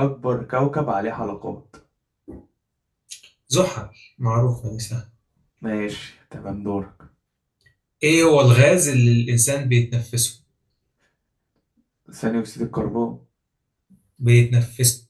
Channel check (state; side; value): identical; both; correlation 1.00